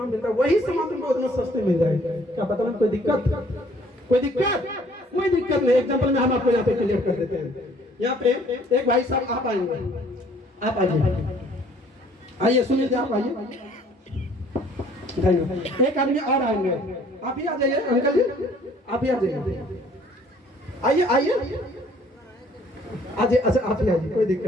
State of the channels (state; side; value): normal; both; correlation 0.58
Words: मिल रहा है, वही सामान तुमको उतना सस्ते मिल रहा है? क्या पता नहीं कोई दिक्कत? कोई दिक्कत नहीं। एग्जांपल में हम आपको यहाँ पे क्लियर कर देते हैं। यहाँ पे एक भाई साहब आप आएंगे, आप आइए सुनील, आप आइए। एक आदमी और आएंगे, आप ही आ जाइए अंकल जी, आप ही आ जाइए, आइए। अच्छा आप ही आइए, कोई